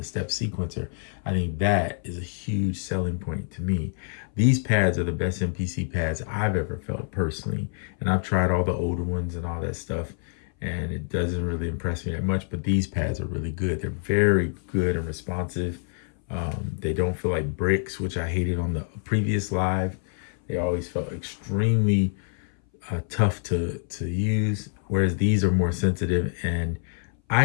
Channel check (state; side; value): silent; right; 59 dB below the other